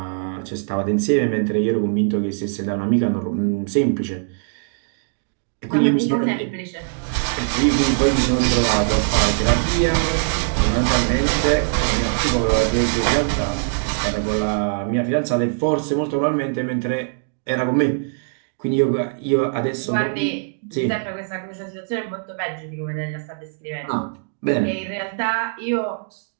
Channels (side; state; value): left; silent; digital silence